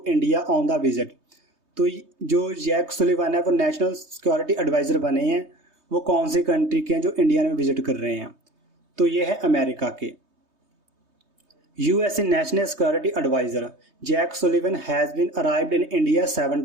India on the visit. तो जो Jake Sullivan है वो national security adviser बने हैं। वो कौन सी कंट्री के हैं जो इंडिया में विजिट कर रहे हैं? तो ये है अमेरिका के। USA National Security Advisor Jack Sullivan has been arrived in India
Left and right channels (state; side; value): late; left; 3.2 ms